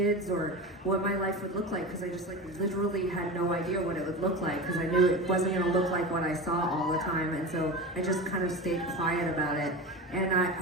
or what my life would look like because I just like literally had no idea what it would look like because I knew it wasn't going to look like what I saw all the time, and so I just kind of stayed quiet about it. And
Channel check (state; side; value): normal; both; correlation 0.27